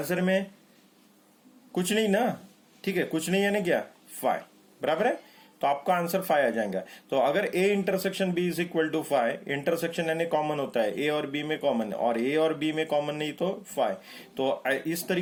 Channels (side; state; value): both; identical; correlation 1.00